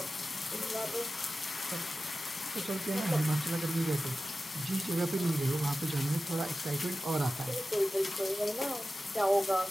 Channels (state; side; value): normal; both; correlation 0.95